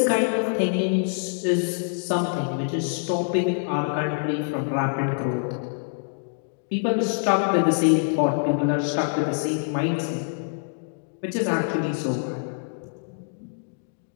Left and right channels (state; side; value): silent; right; digital silence